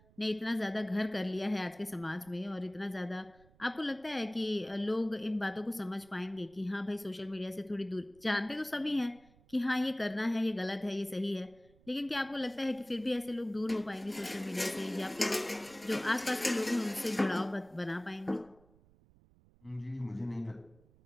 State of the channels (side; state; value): right; noise; rumble, 28 dB below the sound